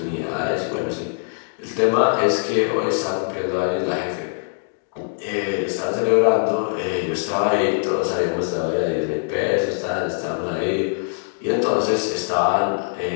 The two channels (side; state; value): right; silent; digital silence